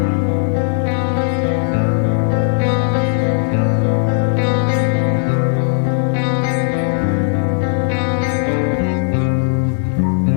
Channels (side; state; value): right; silent; 62 dB below the other